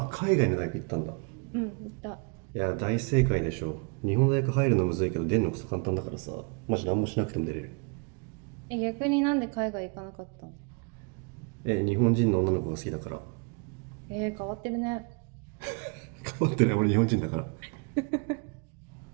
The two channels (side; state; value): left; quieter; 34.5 dB